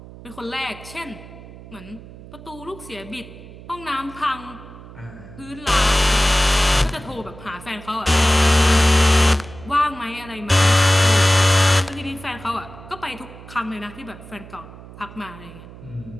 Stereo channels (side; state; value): right; noise; hum, 17 dB below the sound